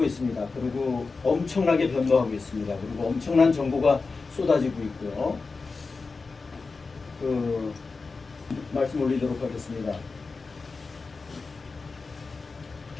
있습니다. 그리고 엄청나게 변모하고 있습니다. 그리고 엄청난 정보가 쏟아지고 있고요. 말씀 올리도록 하겠습니다.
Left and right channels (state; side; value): quieter; right; 4.2 dB